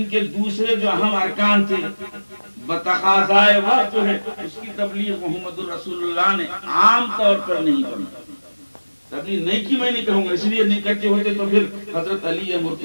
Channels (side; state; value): both; inverted; correlation -1.00